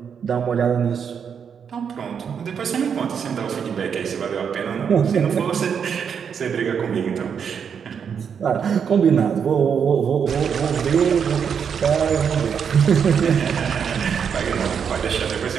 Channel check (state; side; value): quieter; left; 7.2 dB